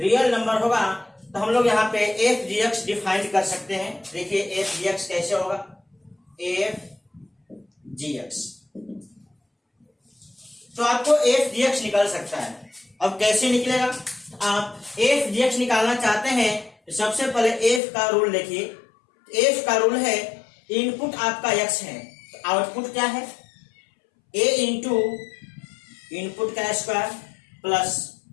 नंबर होगा। तो हम लोग यहाँ पे एफ जी एक्स डिफाइन कर सकते हैं। देखिए एफ जी एक्स कैसे होगा, एफ जी एक्स, तो आपको एफ जी एक्स निकल सकता है। अब कैसे निकलेगा? आप एफ जी एक्स निकालना चाहते हैं तो सबसे पहले एफ का रूल देखिए। एफ का रूल है इनपुट आपका एक्स है तो आउटपुट क्या है? ए इंटू इनपुट का square plus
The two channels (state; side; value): drops out; right; at 17.8 s